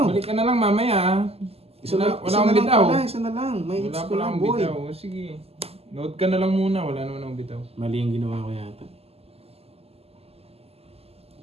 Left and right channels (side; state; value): left; late; 0.29 ms